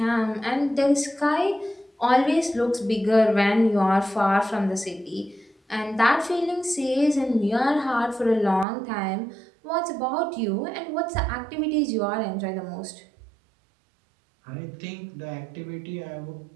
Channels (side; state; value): left; drops out; at 8.7 s